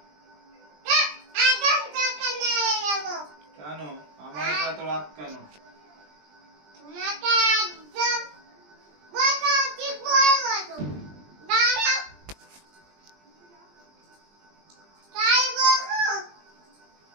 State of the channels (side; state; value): left; late; 20 ms